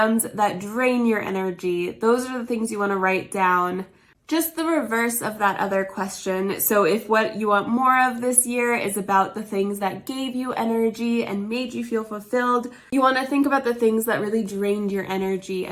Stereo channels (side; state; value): both; identical; correlation 1.00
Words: that drain your energy. Those are the things you want to write down. Just the reverse of that other question. So if what you want more of this year is about the things that gave you energy and made you feel fulfilled, you want to think about the things that really drained your energy